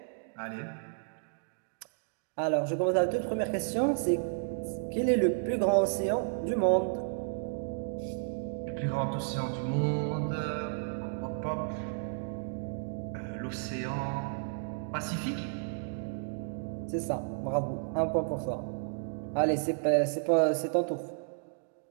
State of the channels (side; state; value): left; silent; digital silence